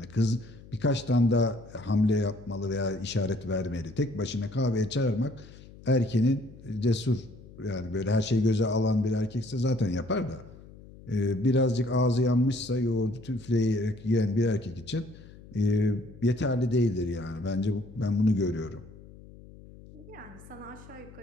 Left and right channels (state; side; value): noise; left; hum, 20 dB below the sound